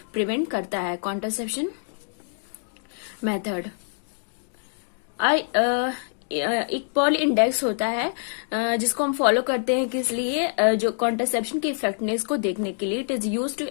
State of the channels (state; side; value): silent; right; digital silence